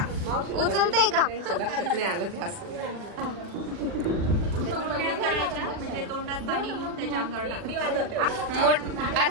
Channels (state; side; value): late; left; 40 ms